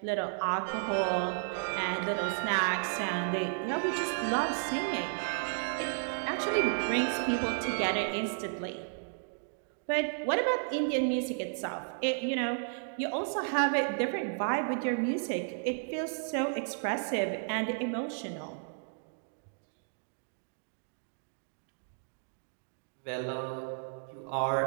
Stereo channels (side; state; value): left; silent; digital silence